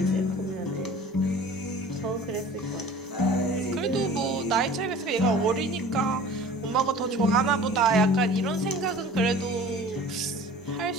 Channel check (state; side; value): normal; both; correlation 0.44